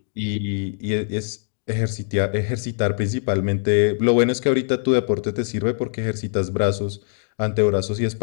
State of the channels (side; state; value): right; silent; digital silence